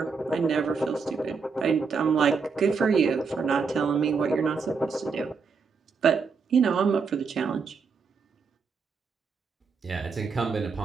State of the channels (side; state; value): left; quieter; 5.2 dB